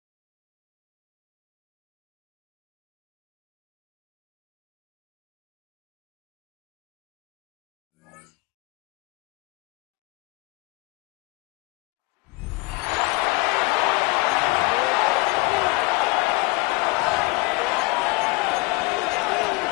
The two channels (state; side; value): quieter; right; 24.5 dB